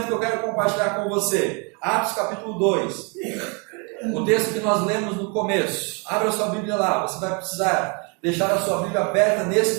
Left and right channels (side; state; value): left; quieter; 33.7 dB